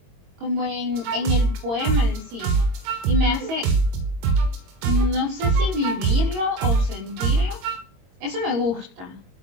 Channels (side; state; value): left; late; 22 ms